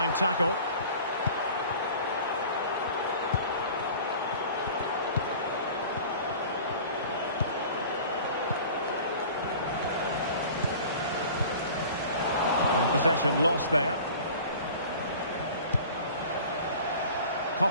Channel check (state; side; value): inverted; both; correlation -0.43